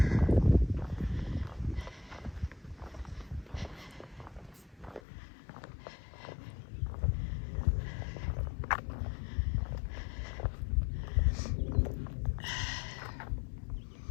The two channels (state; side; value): drops out; right; at 5.0 s